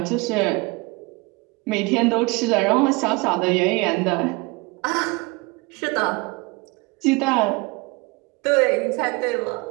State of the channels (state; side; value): quieter; left; 25.6 dB